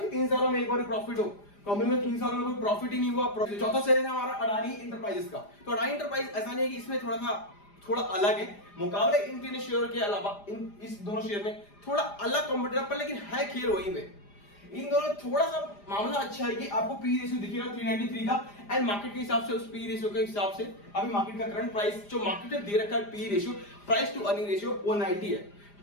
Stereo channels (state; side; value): late; right; 4.9 ms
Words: 3 सालों में एक बार प्रॉफिट हो, कंपनी में 3 सालों में कोई प्रॉफिट ही नहीं हुआ। चौथा शेयर है हमारा अडानी इंटरप्राइजेस का। तो अडानी इंटरप्राइज ऐसा नहीं है कि इसमें थोड़ा अलग है मुकाबले इन 3 शेयर के अलावा, इस दोनों शेयर में थोड़ा अलग कंपटीटर पर, लेकिन है खेल वही में। इन दोनों थोड़ा सा मामला अच्छा है कि आपको पी रेशियो दिखेगा 393 का, एंड मार्केट के हिसाब से उस पी रेशियो के हिसाब से अभी मार्केट का करंट प्राइस जो मार्केट ने दे रखा है P ratio, price to earning ratio 190 है,